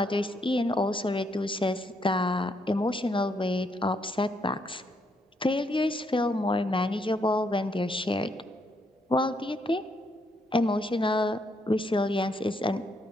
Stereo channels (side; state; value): both; normal; correlation 0.75